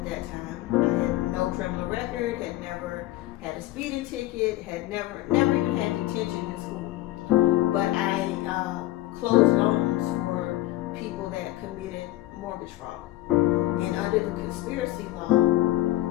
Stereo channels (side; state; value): right; quieter; 16.8 dB